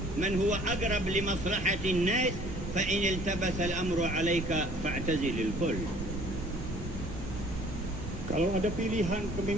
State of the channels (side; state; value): both; normal; correlation 0.54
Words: من هو أقرب لمصلحة الناس، فإن التبس الأمر عليك فاعتزل الكل. Kalau ada pilihan